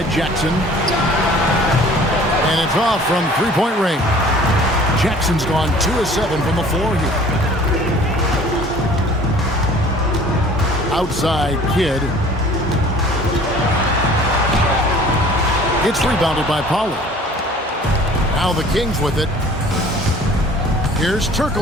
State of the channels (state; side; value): normal; both; correlation 0.49